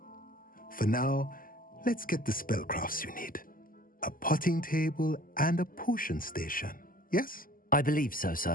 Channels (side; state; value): right; late; 0.41 ms